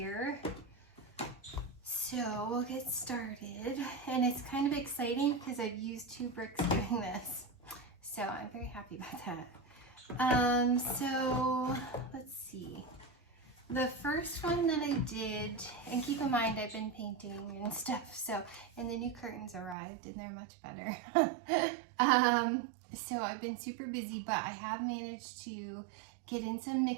So we'll get started, and it's kind of exciting because I've used 2 bricks doing this, so I'm very happy about that. So let's see. The first one that I did, and keep in mind I've been painting and stuff, so, and the new curtains arrived and they're much better. So I've been super busy, but I have managed to get in some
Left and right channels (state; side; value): drops out; left; at 19.8 s